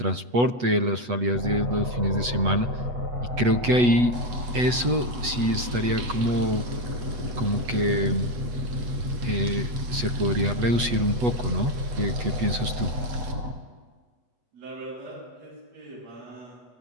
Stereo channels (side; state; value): left; late; 8.2 ms